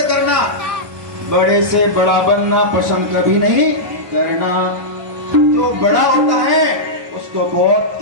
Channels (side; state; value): left; late; 1.2 ms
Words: करना, बड़े से बड़ा बनना पसंद कभी नहीं करना। जो बड़ा होता है उसको बहुत